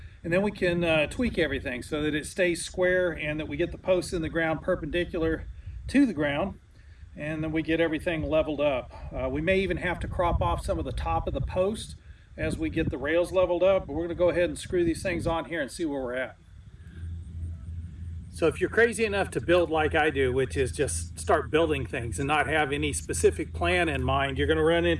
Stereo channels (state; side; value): identical; both; correlation 1.00